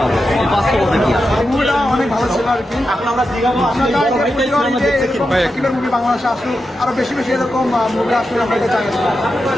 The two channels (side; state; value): both; normal; correlation 0.89